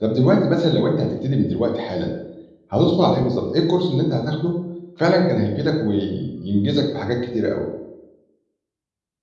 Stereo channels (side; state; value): both; identical; correlation 1.00